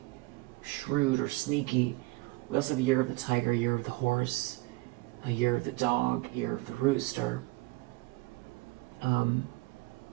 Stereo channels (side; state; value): left; quieter; 21.4 dB